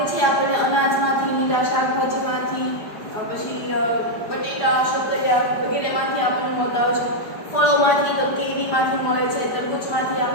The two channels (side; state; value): right; late; 5.0 ms